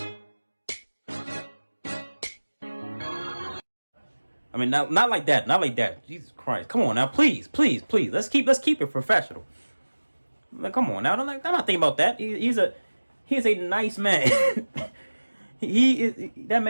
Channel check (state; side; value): inverted; both; correlation -1.00